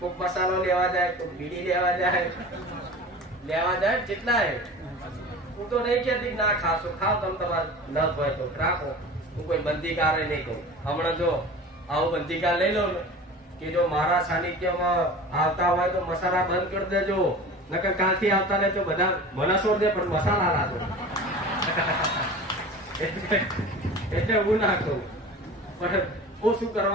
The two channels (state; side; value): normal; both; correlation 0.37